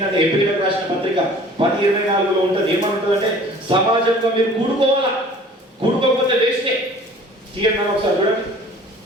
ఏప్రిల్ రాసిన పత్రిక 10:24లో ఉంటుంది. ఏమని ఉంటుంది అంటే సమాజంగా మీరు కూడుకోవాలా, కూడుకోకపోతే వేస్టే. తీయండి ఒకసారి చూడండి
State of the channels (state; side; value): normal; both; correlation 0.49